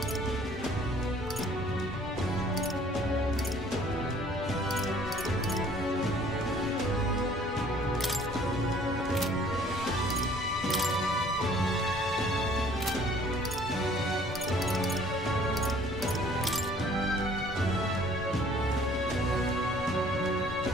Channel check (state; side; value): normal; both; correlation 0.56